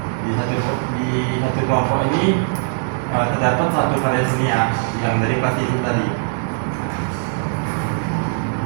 di satu kelompok ini terdapat satu karya seni ya, yang dari plastisin tadi.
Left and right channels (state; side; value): silent; left; digital silence